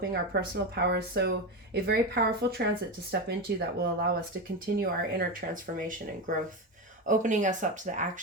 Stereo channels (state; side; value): normal; both; correlation 0.16